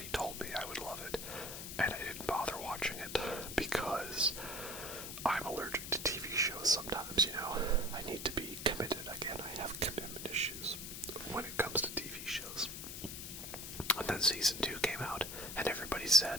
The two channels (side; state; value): left; noise; hiss, 8 dB below the sound